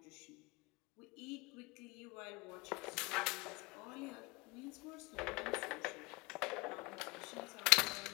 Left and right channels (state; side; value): quieter; right; 25.2 dB